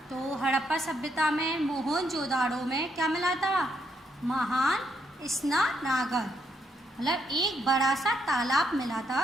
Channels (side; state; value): both; normal; correlation 0.76